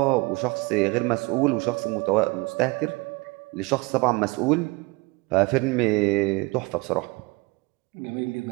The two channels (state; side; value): quieter; left; 25.3 dB